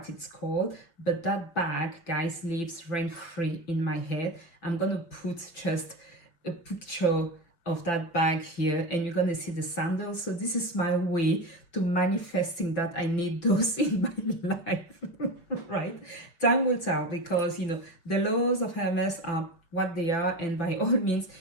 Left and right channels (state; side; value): late; right; 5.9 ms